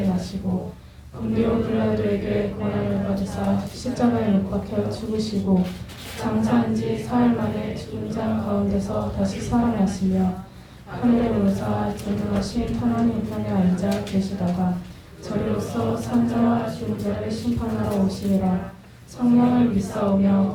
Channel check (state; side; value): identical; both; correlation 1.00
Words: 나시고 본디오 빌라도에게 고난을 받으사 십자가에 못 박혀 죽으시고 장사한 지 사흘 만에 죽은 자 가운데서 다시 살아나시며 하늘에 오르사 전능하신 하나님 우편에 앉아 계시다가 저리로서 산자와 죽은 자를 심판하러 오시리라. 성령을 믿사오며